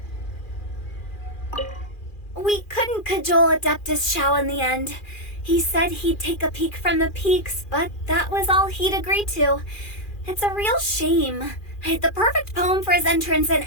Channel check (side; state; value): right; late; 2.4 ms